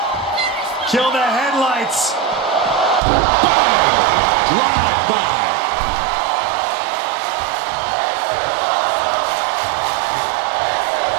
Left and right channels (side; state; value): left; drops out; at 3.0 s